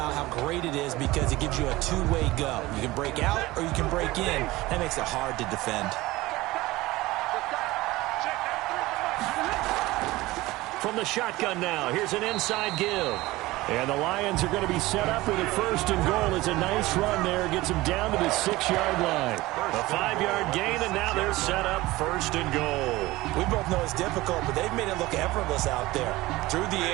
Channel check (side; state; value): left; quieter; 19.2 dB